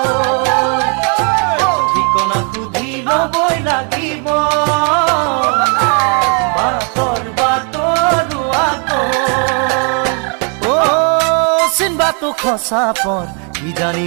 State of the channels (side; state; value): left; quieter; 39.4 dB